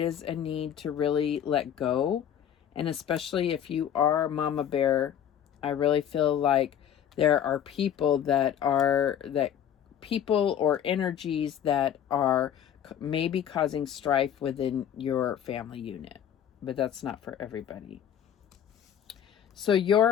a need to really let go. And especially if you are Mama Bear, I really feel like there are people people or energies that are maybe causing strife within your family unit. But that's not for everybody. So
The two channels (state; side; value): quieter; right; 9.5 dB